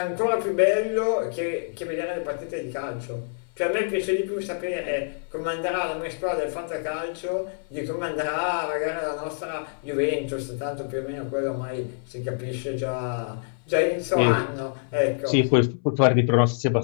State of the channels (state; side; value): silent; right; 61 dB below the other